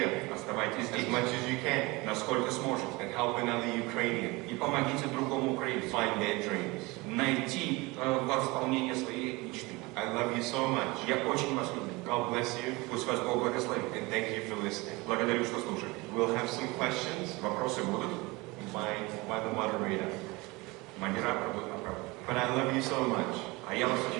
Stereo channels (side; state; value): left; quieter; 23.8 dB